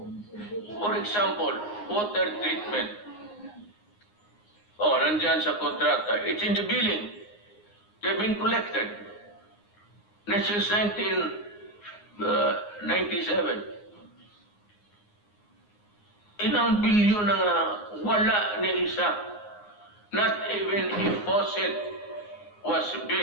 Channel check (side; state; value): right; late; 9.6 ms